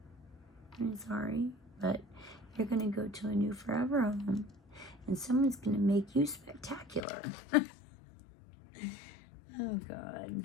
I'm sorry, but you're gonna go to a new forever home, and someone's gonna make you spectacular. Oh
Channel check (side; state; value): right; drops out; at 7.0 s